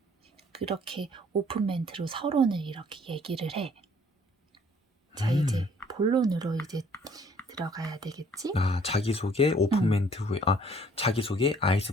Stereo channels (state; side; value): normal; both; correlation 0.59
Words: 그렇게 오픈 멘트로 서론을 이렇게 얘기를 해. 자, 이제 본론으로 이제 들어가야 되겠지? 자기소개 오픈 음. 멘트 후에 자기소개 아이스